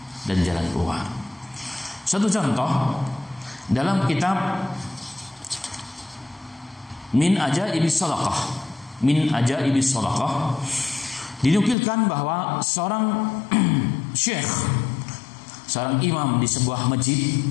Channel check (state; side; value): drops out; right; at 11.8 s